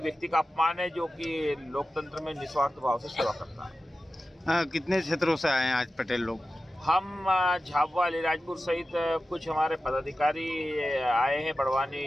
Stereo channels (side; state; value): both; normal; correlation 0.94